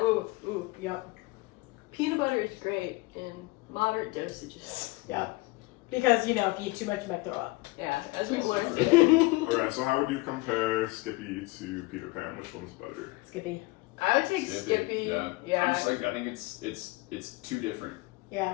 Ooh. Yep. Peanut butter is great in moderate dosages. Yep. Because you know, if you eat too much, you might throw up. Yeah, as we've learned today. Alright, so how would you compare Skippy to Peter Pan? Which one's better? Skippy. I would take Skippy. Yeah. I'm just like I think it's too different.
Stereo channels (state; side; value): quieter; right; 22.7 dB